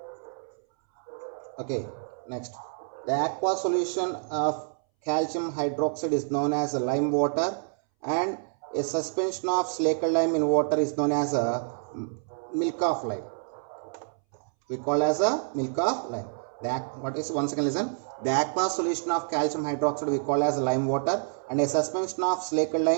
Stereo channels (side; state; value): left; silent; 59 dB below the other